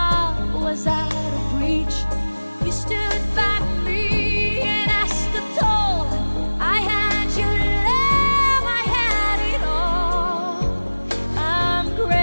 was out of reach. You stood by me and I stood tall. I had your love, I had it all. I'm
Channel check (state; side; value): inverted; both; correlation -1.00